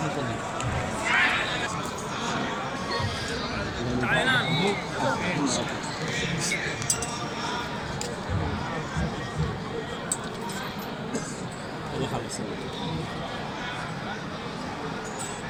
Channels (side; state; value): both; identical; correlation 1.00